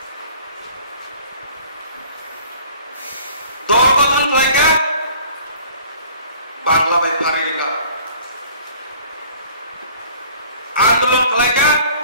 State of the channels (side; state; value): both; inverted; correlation -0.51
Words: Dorgotan mereka Bangla baik hari mereka Andolon mereka